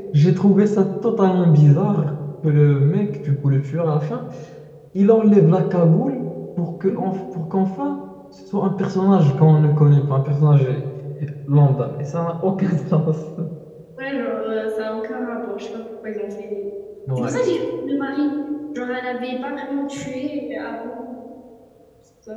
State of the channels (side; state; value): both; identical; correlation 1.00